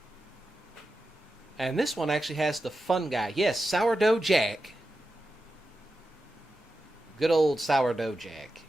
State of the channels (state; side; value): normal; both; correlation 0.91